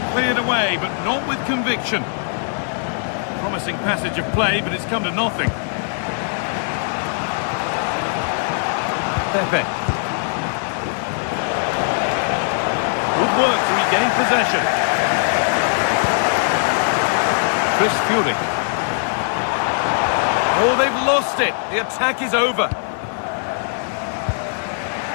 Cleared away, but not with conviction. Promising passage of play, but it's come to nothing. Pepe. Good work to regain possession. Chris Fury. Oh, they've lost it. The attack is over.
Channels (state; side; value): silent; right; digital silence